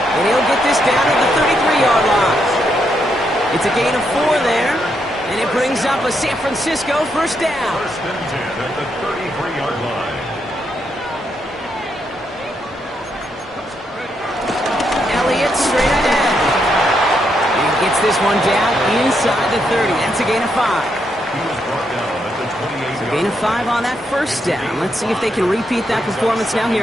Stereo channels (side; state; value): both; normal; correlation 0.79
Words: And he'll get this down to the 33-yard line. It's a gain of 4 there, and it brings up a San Francisco 1st down. 1st and 10 at the 33-yard line. Elliott straight ahead. Gets this one down inside the 30. That's a gain of 5. He was brought down at the 28-yard line. Gain of 5 on that 1st down. Let's see if they can repeat that performance now here